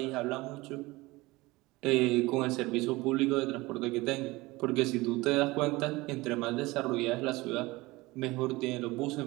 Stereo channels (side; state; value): left; quieter; 21.3 dB